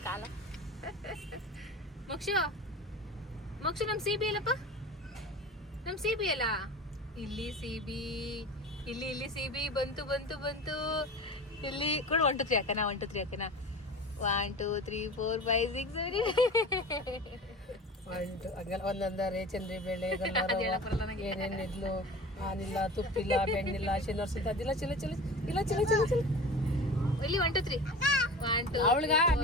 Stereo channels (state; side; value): normal; both; correlation 0.35